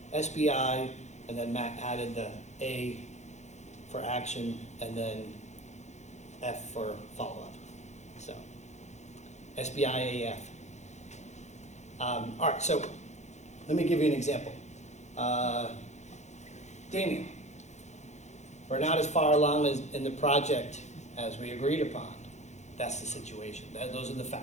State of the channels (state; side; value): late; right; 0.33 ms